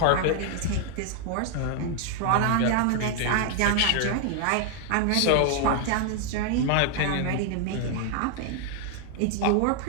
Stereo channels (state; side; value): different; both; correlation 0.00